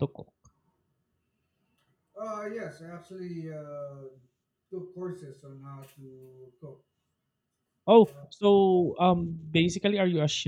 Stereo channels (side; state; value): both; identical; correlation 1.00